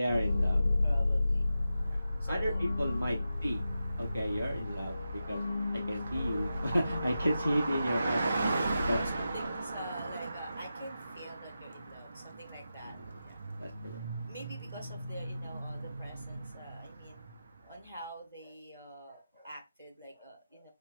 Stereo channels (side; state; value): both; inverted; correlation -0.91